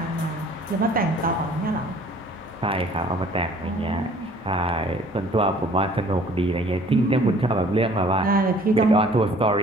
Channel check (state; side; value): normal; both; correlation 0.53